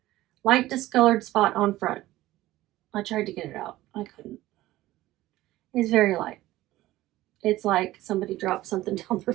light discolored spot on front. I tried to get it out. I couldn't. It's very light. It's like somebody dropped something down their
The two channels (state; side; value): quieter; left; 16.4 dB